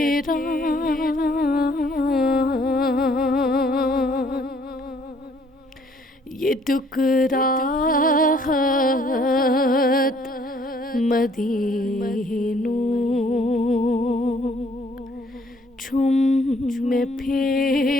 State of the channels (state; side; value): normal; both; correlation 0.62